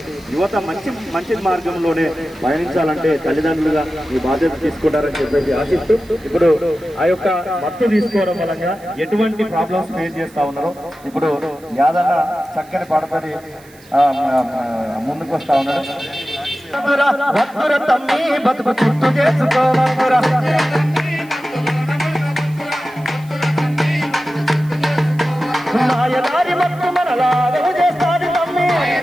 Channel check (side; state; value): right; noise; hiss, 26 dB below the sound